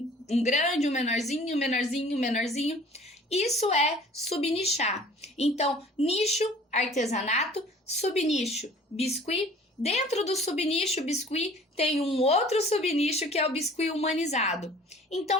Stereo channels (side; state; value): both; normal; correlation 0.50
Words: grande, um menorzinho, um menorzinho, um menorzinho. Isso é subnichar. Então, nicho, artesanato, subnicho, biscuit. Dentro do subnicho biscuit tem um outro subnicho que é o biscuit humanizado.